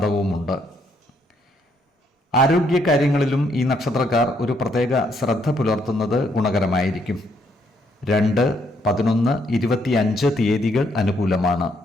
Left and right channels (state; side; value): normal; both; correlation 0.72